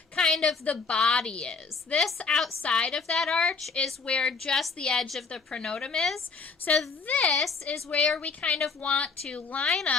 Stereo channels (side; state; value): right; quieter; 4.7 dB